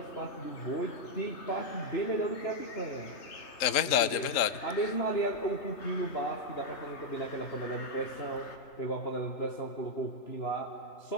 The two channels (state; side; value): late; right; 3.7 ms